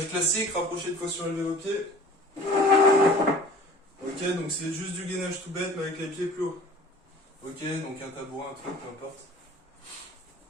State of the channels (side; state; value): both; normal; correlation 0.45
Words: classique, rapproché de fois surélevé vos pieds. Ok, donc c'est juste du gainage tout bête mais avec les pieds plus hauts. Ok, donc un tabouret, un truc, peu importe.